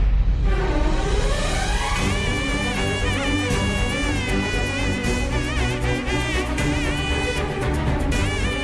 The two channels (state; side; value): identical; both; correlation 1.00